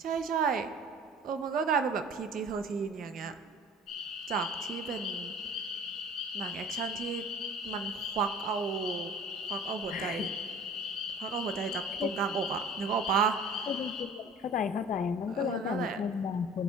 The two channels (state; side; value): normal; both; correlation 0.45